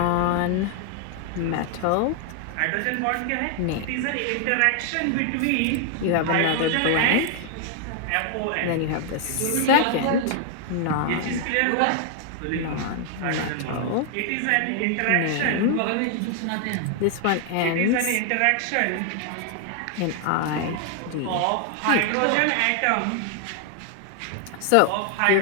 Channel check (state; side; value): different; both; correlation 0.00